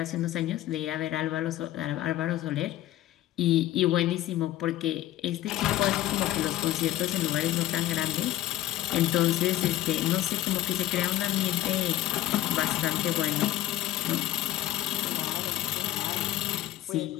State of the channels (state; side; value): quieter; right; 14.2 dB